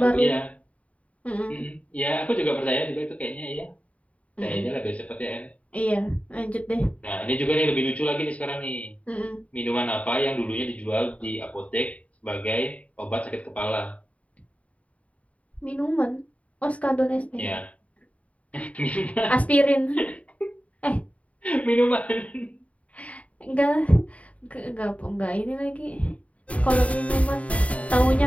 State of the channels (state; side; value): late; right; 0.067 ms